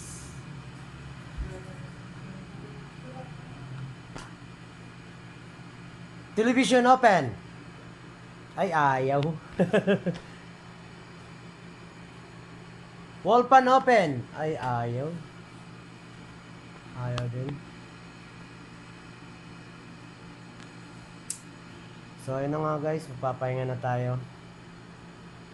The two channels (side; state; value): both; identical; correlation 1.00